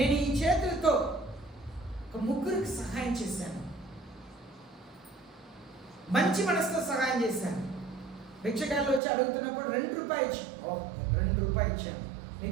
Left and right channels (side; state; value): left; drops out; at 9.0 s